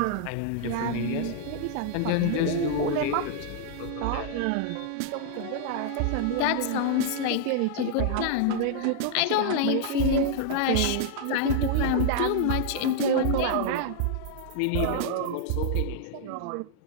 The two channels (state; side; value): different; both; correlation -0.01